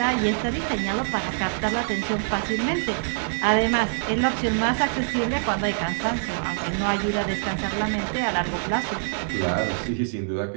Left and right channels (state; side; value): silent; left; 62 dB below the other